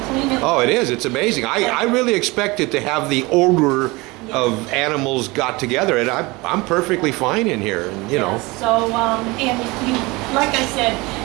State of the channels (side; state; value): left; quieter; 23.5 dB